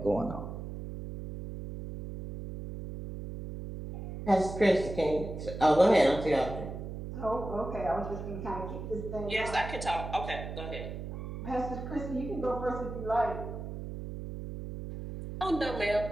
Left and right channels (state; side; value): noise; right; hum, 8 dB below the sound